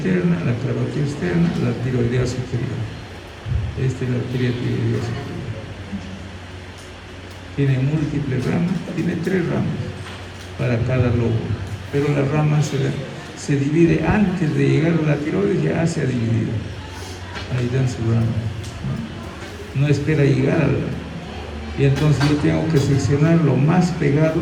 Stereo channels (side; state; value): both; identical; correlation 1.00